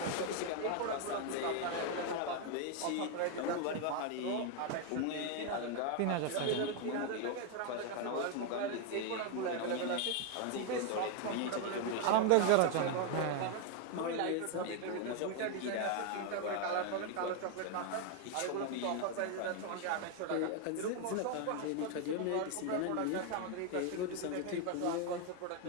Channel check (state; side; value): different; both; correlation 0.01